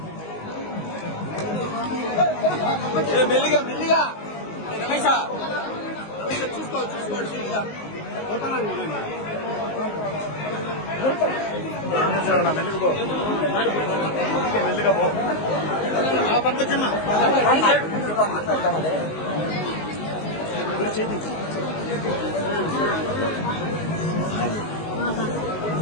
మెల్లిగా మెల్లిగా రమేష చూసుకోండి మెల్లిగా పో పట్టుకొచ్చమ్మా.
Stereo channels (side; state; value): right; late; 19 ms